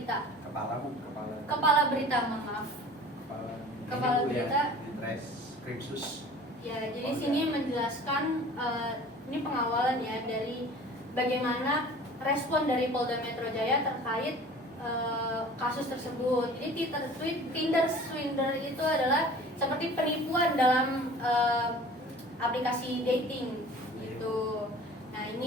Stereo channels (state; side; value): normal; both; correlation 0.44